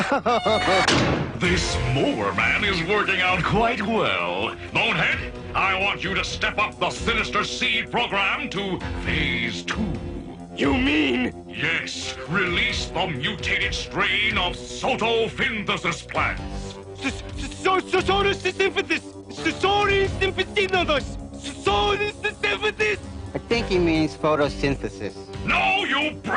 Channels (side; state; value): both; identical; correlation 1.00